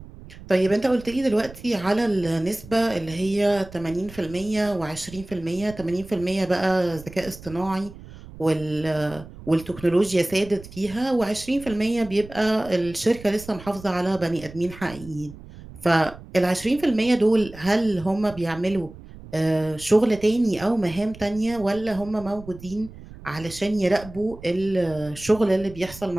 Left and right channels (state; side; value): noise; right; rumble, 17 dB below the sound